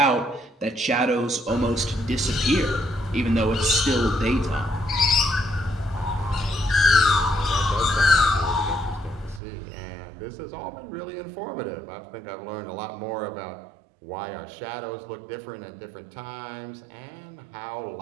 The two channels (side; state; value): left; drops out; at 9.4 s